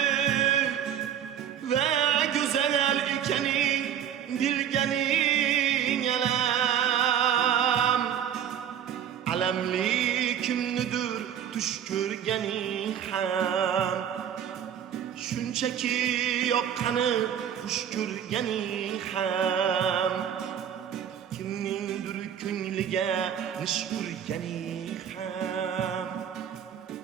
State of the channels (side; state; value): left; quieter; 9.3 dB